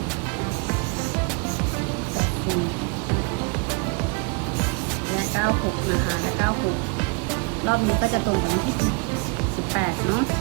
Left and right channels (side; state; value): left; quieter; 31.2 dB